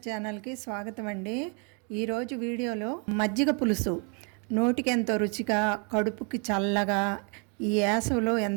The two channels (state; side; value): quieter; left; 36.4 dB